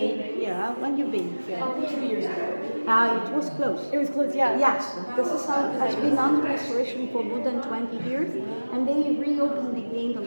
here, when you've been here. 2 years ago. It was closed. It was closed, yeah. Yes, this is has been under restoration for more than 20 years, and they reopened again the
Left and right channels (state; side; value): inverted; both; correlation -1.00